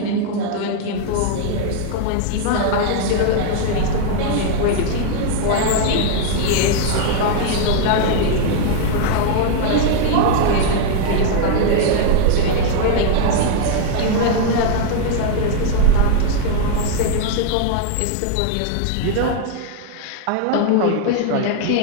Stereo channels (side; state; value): both; different; correlation 0.00